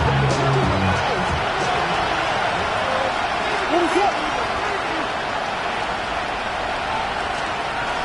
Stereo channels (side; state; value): both; identical; correlation 1.00